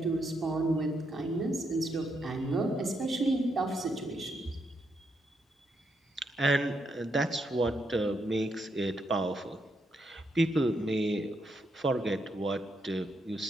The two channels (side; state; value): both; normal; correlation 0.79